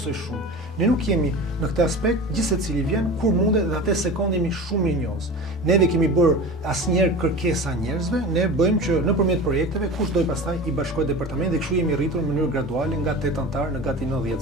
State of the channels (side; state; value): both; normal; correlation 0.33